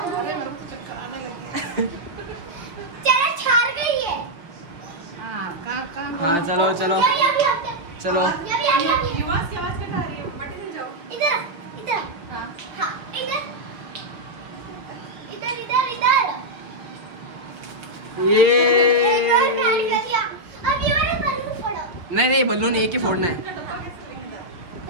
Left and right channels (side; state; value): left; late; 5.6 ms